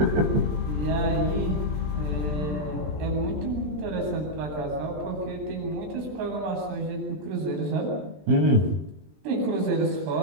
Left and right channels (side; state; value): left; late; 20 ms